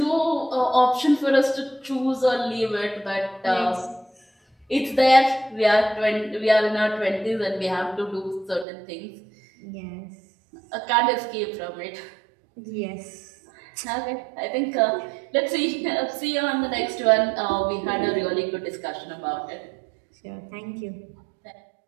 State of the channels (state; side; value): drops out; left; at 8.7 s